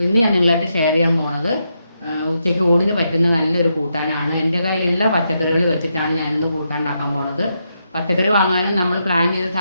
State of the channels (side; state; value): both; inverted; correlation -0.82